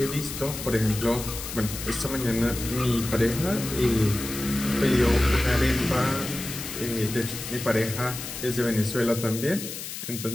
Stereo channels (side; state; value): left; noise; hiss, 8 dB below the sound